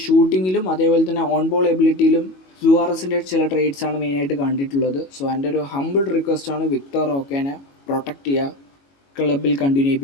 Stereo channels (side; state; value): right; late; 22 ms